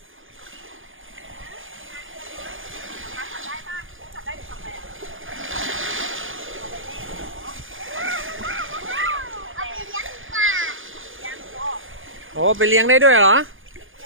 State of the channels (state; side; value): late; left; 0.58 ms